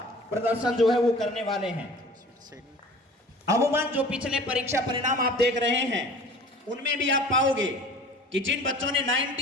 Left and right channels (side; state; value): both; normal; correlation 0.44